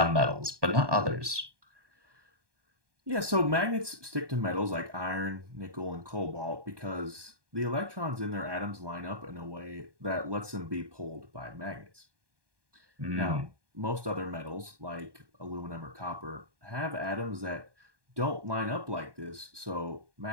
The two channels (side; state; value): left; late; 1.2 ms